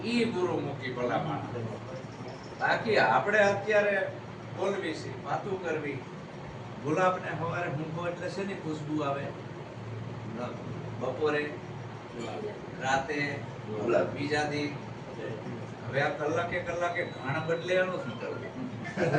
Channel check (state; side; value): identical; both; correlation 1.00